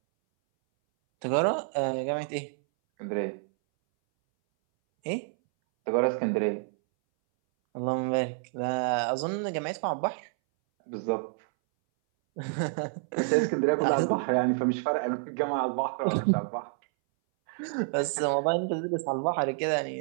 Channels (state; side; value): silent; left; 59 dB below the other